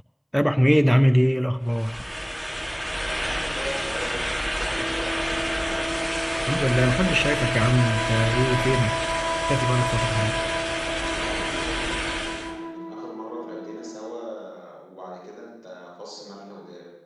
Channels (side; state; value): both; identical; correlation 1.00